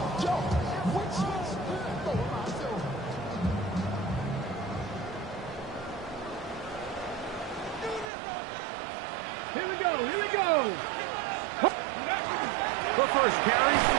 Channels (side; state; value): left; drops out; at 8.1 s